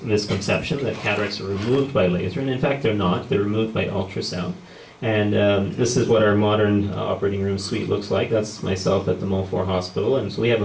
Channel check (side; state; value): both; identical; correlation 1.00